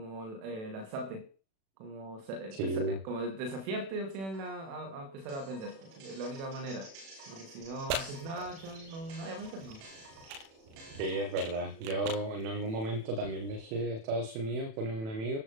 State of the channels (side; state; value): left; late; 36 ms